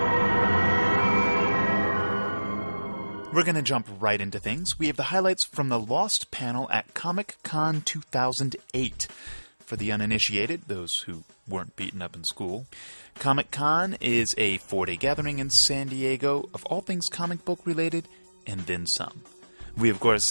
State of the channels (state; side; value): inverted; both; correlation -1.00